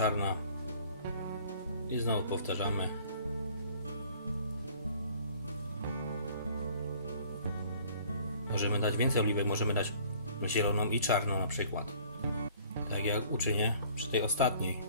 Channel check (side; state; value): both; inverted; correlation -0.54